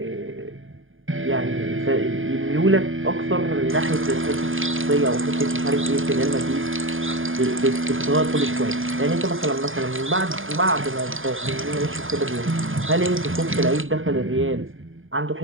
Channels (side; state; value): left; late; 0.59 ms